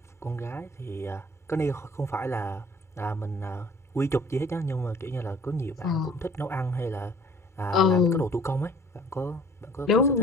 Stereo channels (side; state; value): both; normal; correlation 0.53